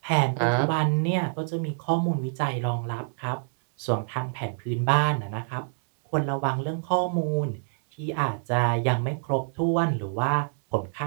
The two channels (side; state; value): left; silent; 59 dB below the other